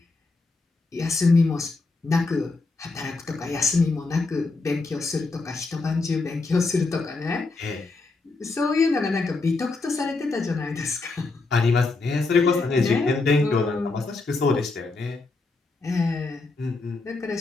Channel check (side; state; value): right; quieter; 3.6 dB